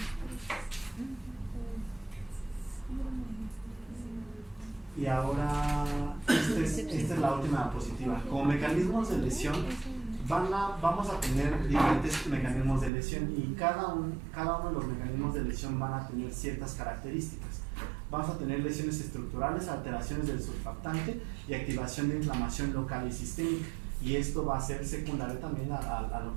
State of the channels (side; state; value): left; drops out; at 12.9 s